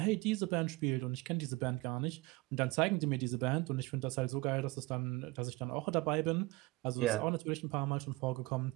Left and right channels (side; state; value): left; quieter; 22.4 dB